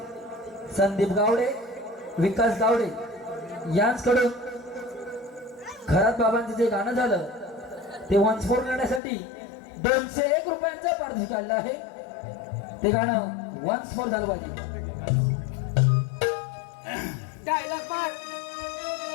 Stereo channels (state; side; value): drops out; right; at 9.0 s